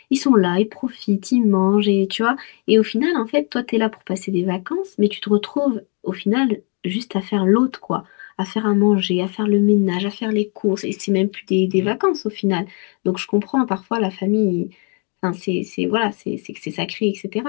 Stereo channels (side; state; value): right; quieter; 37.4 dB